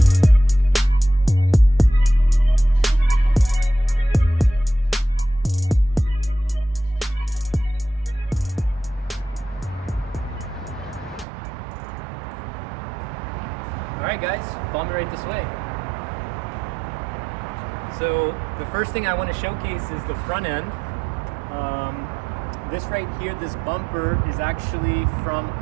Alright guys, follow me right this way. So the first thing I want to showcase is the front end. This right here, this bumper is actually from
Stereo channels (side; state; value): left; drops out; at 11.2 s